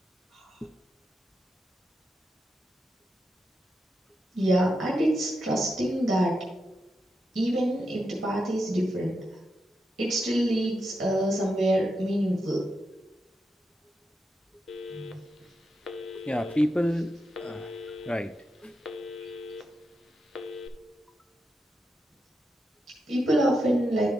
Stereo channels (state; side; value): normal; both; correlation 0.86